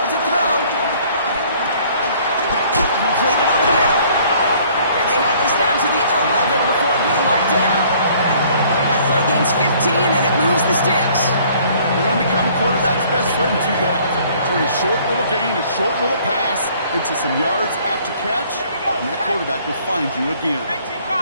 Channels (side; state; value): both; inverted; correlation -0.57